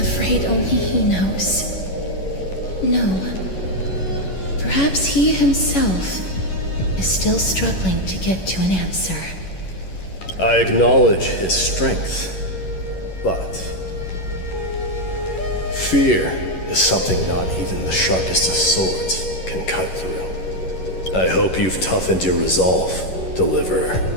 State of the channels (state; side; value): late; right; 11 ms